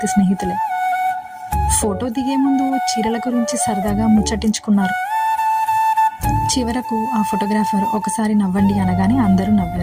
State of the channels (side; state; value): both; identical; correlation 1.00